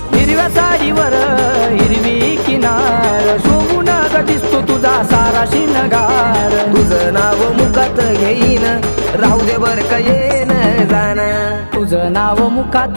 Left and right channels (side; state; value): both; inverted; correlation -1.00